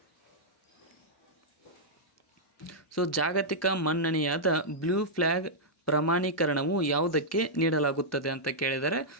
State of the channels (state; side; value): normal; both; correlation -0.08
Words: ಜಾಗತಿಕ ಮನ್ನಣೆಯಾದ ಬ್ಲೂ ಫ್ಲ್ಯಾಗ್ ಪ್ರಮಾಣೀಕರಣವು ಯಾವುದಕ್ಕೆ ನೀಡಲಾಗುತ್ತದೆ ಅಂತ ಕೇಳಿದರೆ,